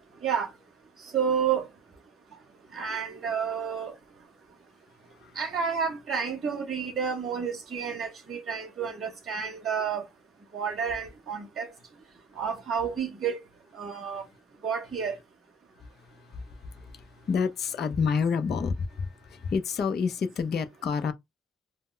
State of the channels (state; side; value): normal; both; correlation 0.43